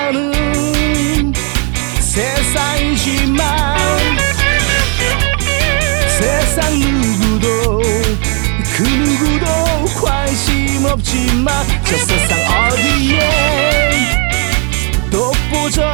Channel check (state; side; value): quieter; left; 37.7 dB